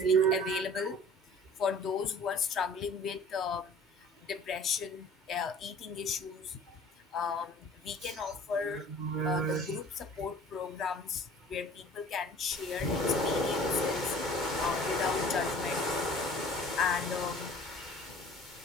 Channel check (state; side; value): normal; both; correlation 0.47